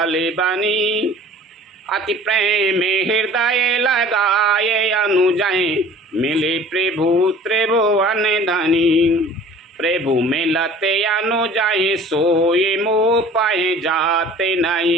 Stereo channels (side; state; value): both; normal; correlation 0.47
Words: बनी, अति प्रेम हृदय लगाए अनुजय, मिले प्रभु त्रिभुवन धनी। प्रभु मिलते अनुजय सोए मोह पाए, जाते